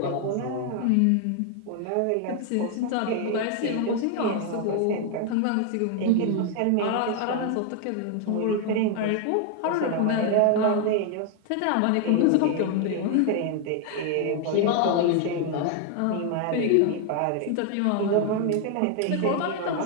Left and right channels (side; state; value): both; different; correlation 0.00